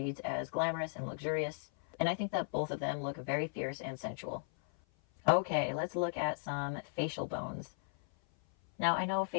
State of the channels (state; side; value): silent; right; 54 dB below the other